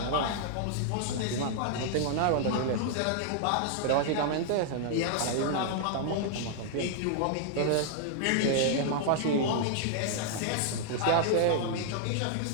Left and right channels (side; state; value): both; different; correlation 0.00